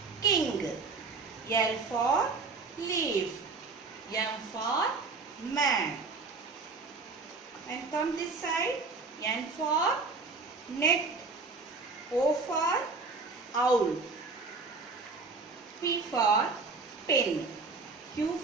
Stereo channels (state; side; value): quieter; left; 4.1 dB